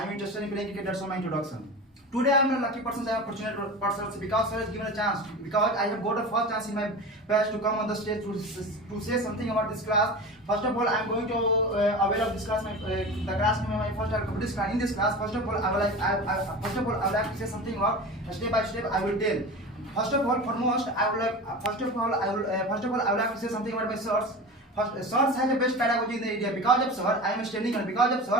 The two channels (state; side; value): normal; both; correlation 0.30